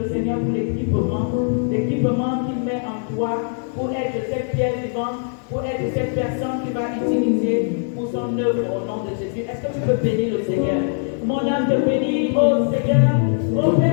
le Seigneur pour l'équipement qu'il met en toi pour être cette pierre vivante, pour être cette personne qui va utiliser pour son œuvre au nom de Jésus? Est-ce que tu peux bénir le Seigneur? Mon âme te bénit, ô Seigneur, ô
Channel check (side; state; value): right; silent; digital silence